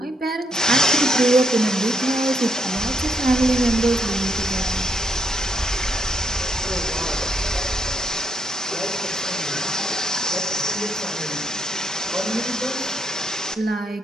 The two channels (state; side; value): normal; both; correlation 0.76